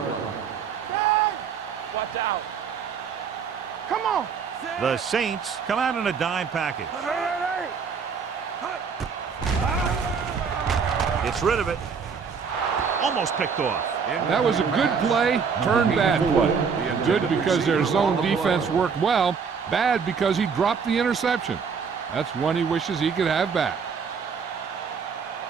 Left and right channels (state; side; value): quieter; left; 6.1 dB